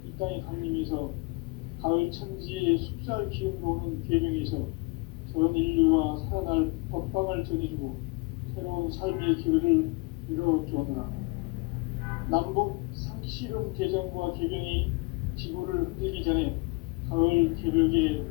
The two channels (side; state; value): right; quieter; 28.3 dB